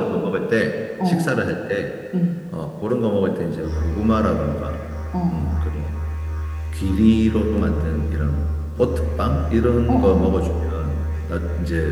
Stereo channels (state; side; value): identical; both; correlation 1.00